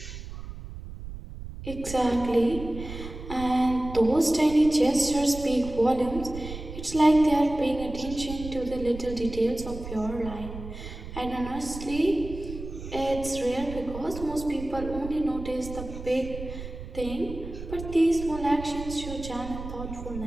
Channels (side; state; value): right; noise; rumble, 10 dB below the sound